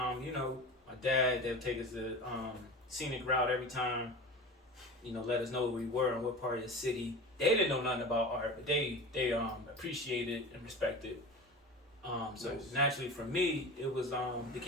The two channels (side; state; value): both; normal; correlation 0.32